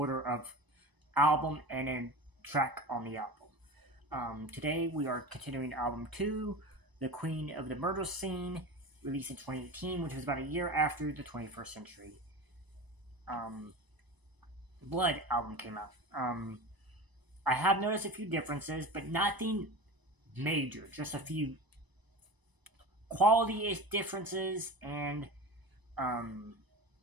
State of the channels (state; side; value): late; left; 1.0 ms